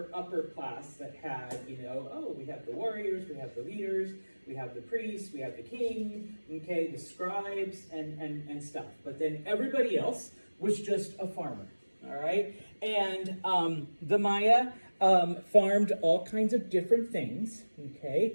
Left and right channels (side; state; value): both; inverted; correlation -1.00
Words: class that had, we have the warriors, we have the leaders, we have the priests, we have the king, okay, the scribes and stuff. But then everybody else was just a farmer. All right, and the Maya farmed all kinds of different things.